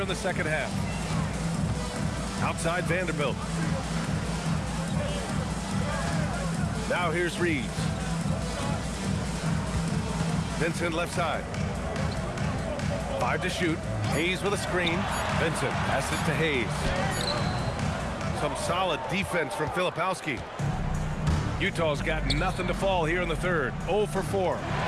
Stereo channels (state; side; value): identical; both; correlation 1.00